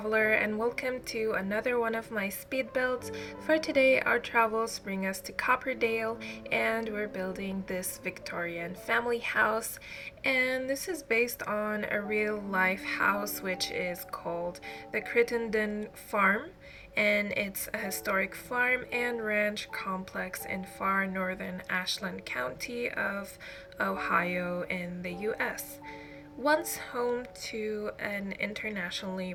and welcome to another one of my speed builds. For today our travels bring us to Copperdale and we're building this Victorian family house, and this is based on a real life house which is called the Crittenden farm, and it's a historic farm and ranch complex in far northern Ashland County of Ohio in the US. Once home to an internationally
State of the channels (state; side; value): identical; both; correlation 1.00